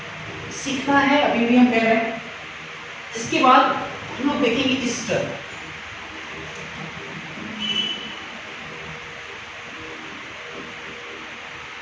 सीखना है अभी भी हम कह रहे हैं। इसके बाद हम लोग देखेंगे ईस्टर।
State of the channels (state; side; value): identical; both; correlation 1.00